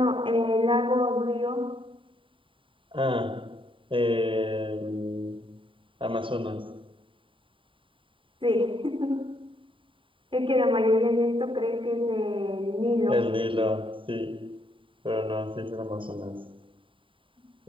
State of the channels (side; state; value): left; late; 0.25 ms